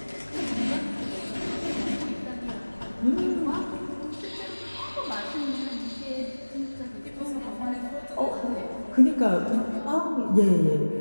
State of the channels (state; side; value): inverted; both; correlation -1.00